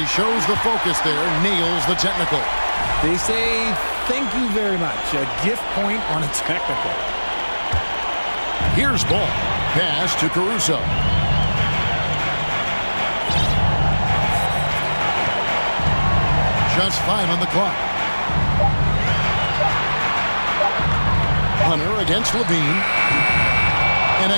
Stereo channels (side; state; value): both; inverted; correlation -1.00